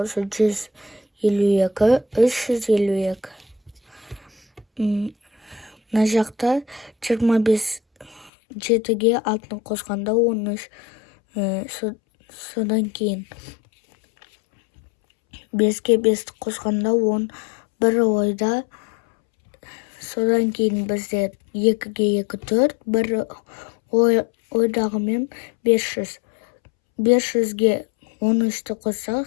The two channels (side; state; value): right; drops out; at 8.3 s